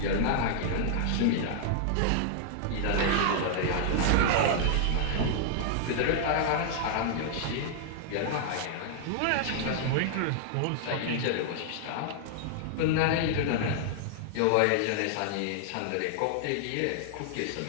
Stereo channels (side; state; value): both; different; correlation -0.01